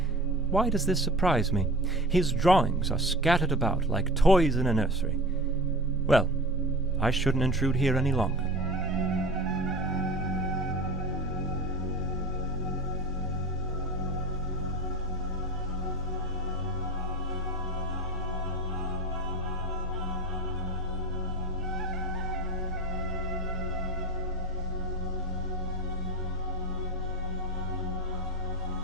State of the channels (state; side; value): normal; both; correlation 0.36